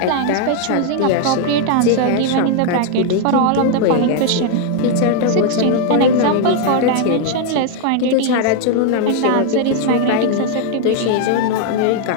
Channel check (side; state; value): both; different; correlation 0.00